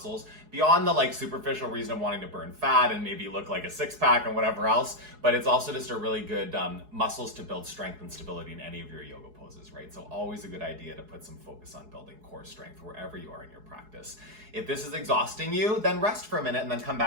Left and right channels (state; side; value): late; left; 4.7 ms